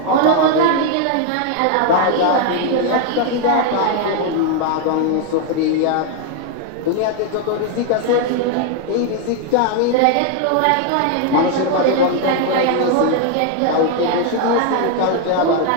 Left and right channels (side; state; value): both; different; correlation 0.00